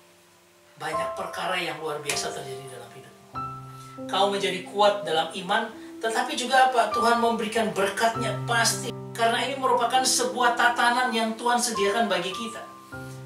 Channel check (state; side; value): identical; both; correlation 1.00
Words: banyak perkara yang luar biasa terjadi dalam hidupmu. Kau menjadi kuat dalam iman, tetapi juga apa? Tuhan memberikan berkatnya pasti. Karena ini merupakan sebuah tatanan yang Tuhan sediakan bagi kita.